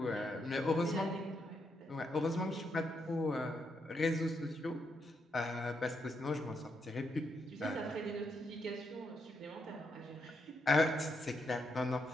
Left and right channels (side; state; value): both; normal; correlation 0.80